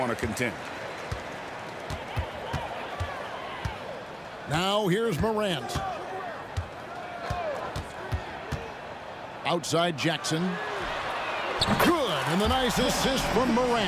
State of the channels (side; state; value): both; identical; correlation 1.00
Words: to contend. Now here's Morant. Outside Jackson. Good, and the nice assist from